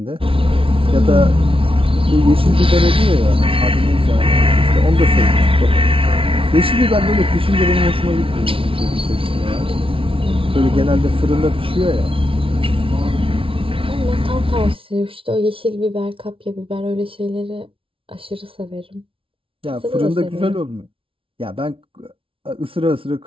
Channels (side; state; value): left; late; 0.26 ms